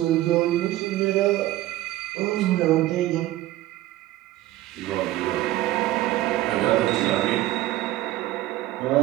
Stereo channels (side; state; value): left; quieter; 15.6 dB